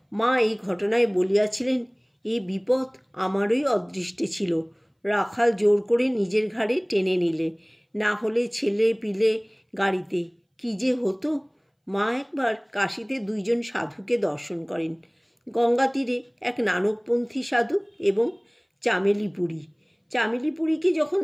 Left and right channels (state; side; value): identical; both; correlation 1.00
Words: মা এই ঘটনায় বলিয়াছিলেন, এই বিপদ আমারই অদৃষ্টে ছিল। রাখাল জোর করে নিজের ঘাড়ে টেনে নিলে, না হলে ছেলে পিলে গাড়িতে কি যে হতো। মা একবার কাশীতে দুইজন সাধুকে দর্শন করেন, গঙ্গা তীরে এক নানকপন্থী সাধু এবং চামেলিপুরী। চামেলিপুরীকে যখন